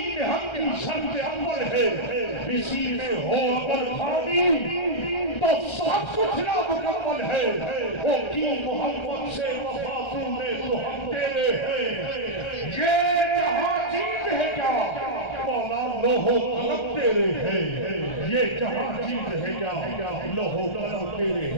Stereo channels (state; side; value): late; right; 1.3 ms